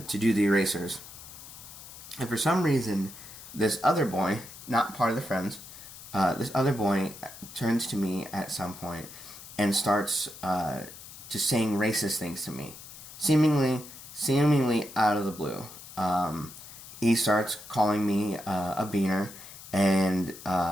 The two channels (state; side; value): noise; left; hiss, 15 dB below the sound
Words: the erasers. And for some reason, this other boy, not part of the friends, this other boy turns to me at some point and starts just saying racist things to me, seemingly out of the blue. He starts calling me a beaner, and